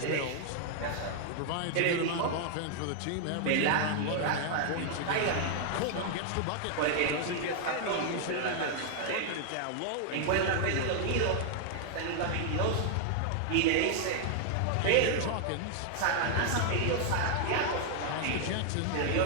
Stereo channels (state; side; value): different; both; correlation -0.01